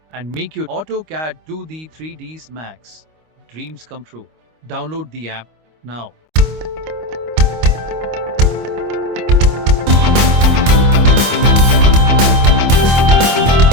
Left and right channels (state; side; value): late; left; 25 ms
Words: and make your AutoCAD 2D 3Ds Max dreams come true. Download the app now.